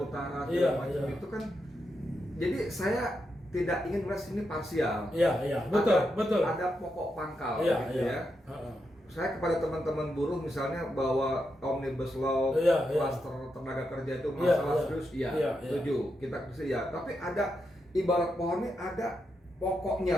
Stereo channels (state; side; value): normal; both; correlation 0.84